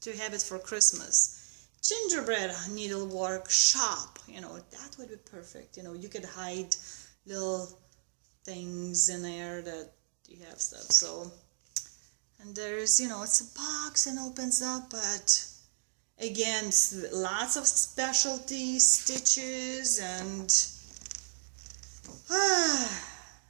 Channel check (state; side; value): silent; left; digital silence